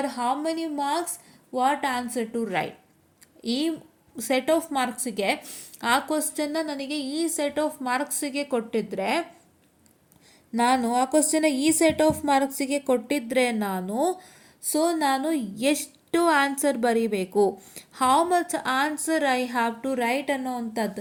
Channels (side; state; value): both; identical; correlation 1.00